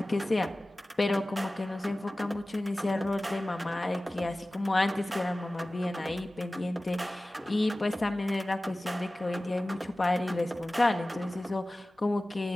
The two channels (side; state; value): both; normal; correlation 0.97